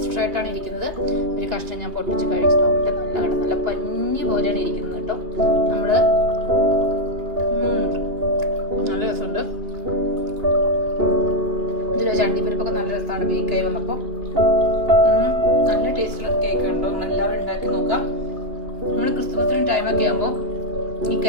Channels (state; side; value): late; left; 2.6 ms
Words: ആയിട്ടാണ് ഇരിക്കുന്നത്. ഒരു കഷ്ണം ഞാൻ പൊട്ടിച്ച് കഴിച്ച് നോക്കട്ടെ. നല്ല പഞ്ഞി പോലെയാണ് ഇരിക്കുന്നത് കേട്ടോ. നമ്മള് നല്ല രസമുണ്ട്. ഇതിലെ ചണ്ടിപ്പരിപ്പൊക്കെ നല്ല രസമാണ് ബേക്കായി വന്നപ്പോൾ. നല്ല ടേസ്റ്റുള്ള കേക്ക് ഉണ്ടോ. നമ്മളെല്ലാവരും ഉണ്ടാക്കി നോക്കാം. നമ്മൾ ക്രിസ്മസിന് ടൈമൊക്കെ ആകുമ്പോൾ ഈ